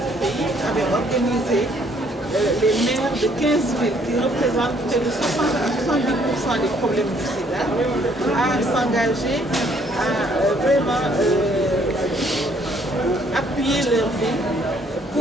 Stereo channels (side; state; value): both; normal; correlation 0.64